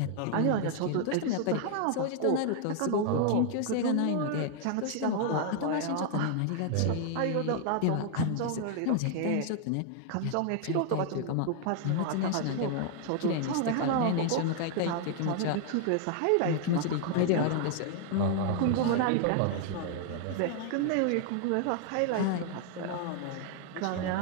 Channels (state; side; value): different; both; correlation 0.00